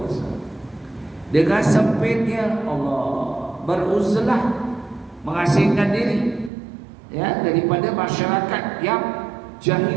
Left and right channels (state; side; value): drops out; left; at 6.5 s